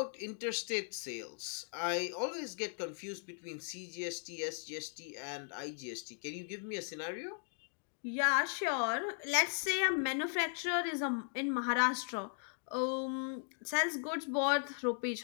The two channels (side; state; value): right; silent; 53 dB below the other